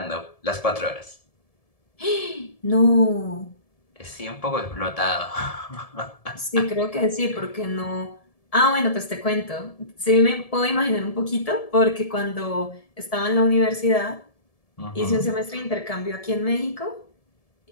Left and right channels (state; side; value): late; right; 1.7 ms